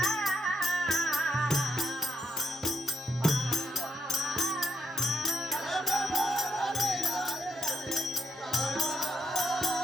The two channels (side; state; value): both; normal; correlation 0.72